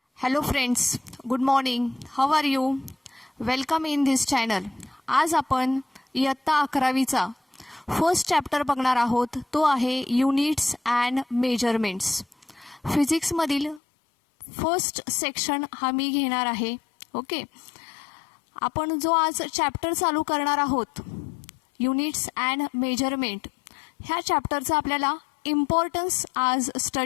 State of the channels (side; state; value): right; drops out; at 13.8 s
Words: Hello friends, good morning. How are you? Welcome in this channel. आज आपण इयत्ता 11वीचा first chapter बघणार आहोत. तो आहे युनिट्स अँड मेजरमेंट्स. फिजिक्समधील फर्स्ट सेक्शन हा मी घेणार आहे. ओके, आपण जो आज चॅप्टर चालू करणार आहोत युनिट्स अँड मेजरमेंट, ह्या चॅप्टरचा आपल्याला इम्पॉर्टन्स आज